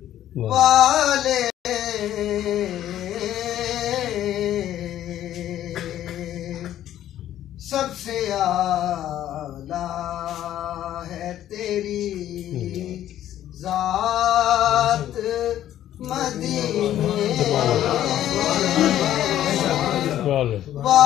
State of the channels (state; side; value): quieter; right; 12.1 dB